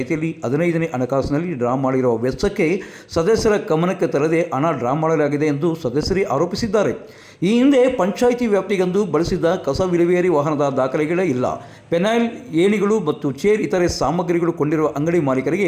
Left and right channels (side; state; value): both; identical; correlation 1.00